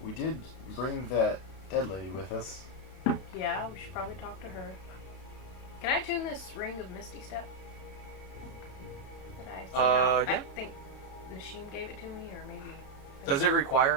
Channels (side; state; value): right; late; 32 ms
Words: we did bring that dead lady with us. Yeah, we should probably talk to her. Can I tune this ring of Misty Step? Did I see that? Yeah. I think Nashim gave it to me, or maybe. Does it